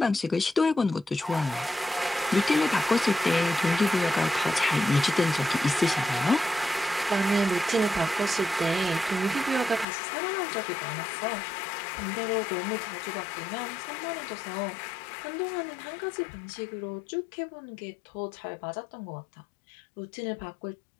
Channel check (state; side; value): drops out; right; at 9.9 s